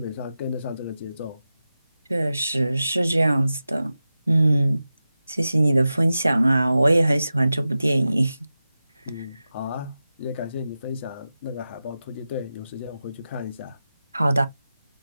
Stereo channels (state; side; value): inverted; both; correlation -0.93